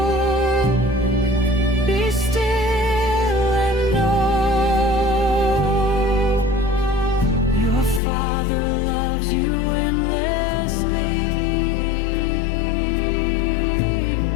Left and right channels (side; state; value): right; drops out; at 8.0 s